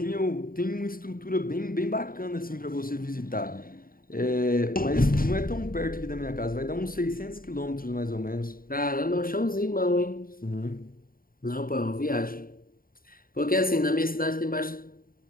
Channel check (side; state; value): right; late; 0.42 ms